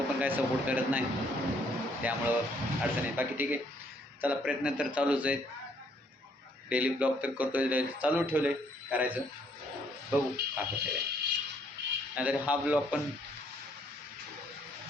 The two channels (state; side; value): normal; both; correlation 0.67